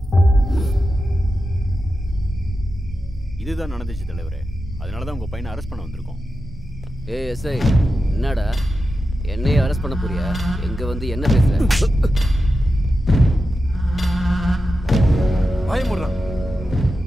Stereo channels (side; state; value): both; normal; correlation 0.90